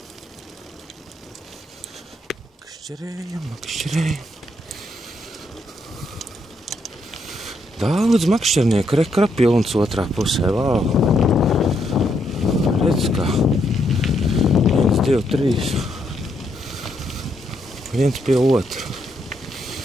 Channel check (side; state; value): both; normal; correlation 0.76